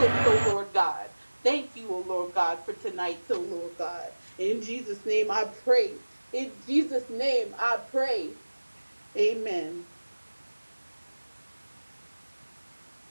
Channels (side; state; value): both; inverted; correlation -1.00